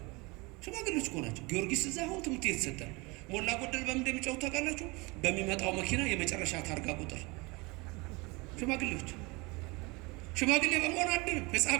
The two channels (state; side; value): quieter; left; 25.9 dB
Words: ሽማግሌዎች እኮ ናቸው። ጊዮርጊስ እዛ አሁን ትምህርት የተሰጠ ሞላ ጎደል በምን እንደሚጫወቱ ታውቃላችሁ? በሚመጣው መኪና የመጨረሻ ታርጋ ቁጥር። ሽማግሌዎች ሽማግሌ በመሆን አድንም፣ ሕፃን